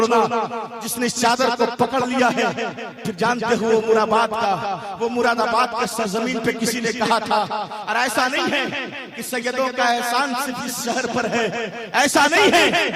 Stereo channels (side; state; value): both; identical; correlation 1.00